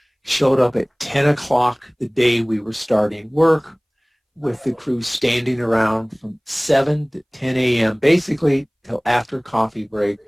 showed up at 10 o'clock the day we were starting work, with the crew standing around from 7 to 10 a.m., basically till after coffee break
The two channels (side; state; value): both; identical; correlation 1.00